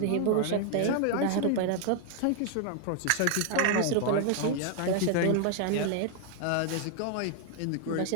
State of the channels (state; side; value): different; both; correlation 0.00